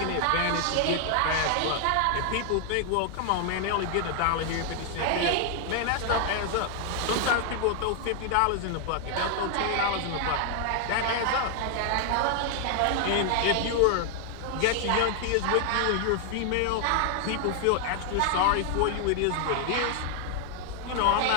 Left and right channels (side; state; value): both; different; correlation 0.00